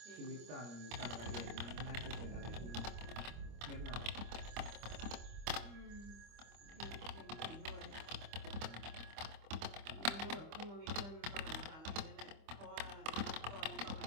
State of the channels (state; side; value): late; left; 25 ms